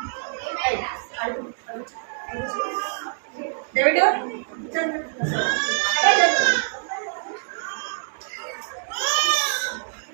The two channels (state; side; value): silent; left; digital silence